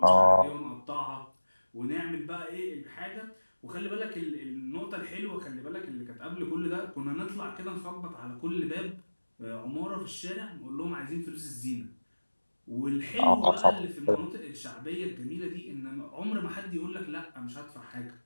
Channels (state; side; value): inverted; both; correlation -1.00